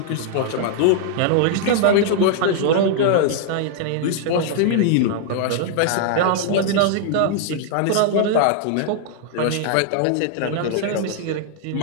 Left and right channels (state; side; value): different; both; correlation -0.01